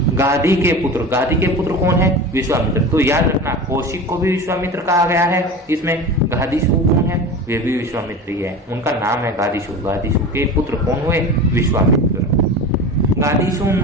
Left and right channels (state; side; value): normal; both; correlation 0.31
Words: गाधी के पुत्र कौन है? विश्वामित्र। तो याद रखना, कौशिक को भी विश्वामित्र कहा गया है, इसमें गाधीशु कौन है? वे भी विश्वामित्र ही है, उनका नाम है गाधीशु। गाधीशु के पुत्र कौन हुए? विश्वामित्र। गाधीशु